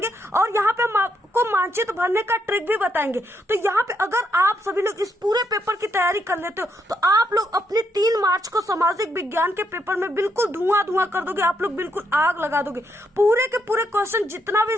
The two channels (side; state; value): both; normal; correlation 0.77